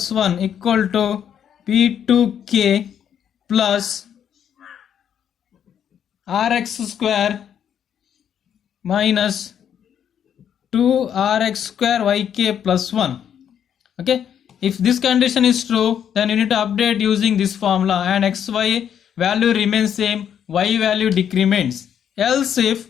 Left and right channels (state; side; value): quieter; right; 8.9 dB